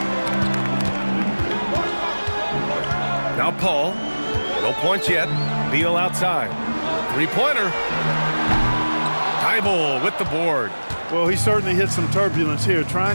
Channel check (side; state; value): both; inverted; correlation -1.00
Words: Now Paul. No points yet. Beal outside. Three-pointer. Thibault with the board. Well, he certainly hit some turbulence here,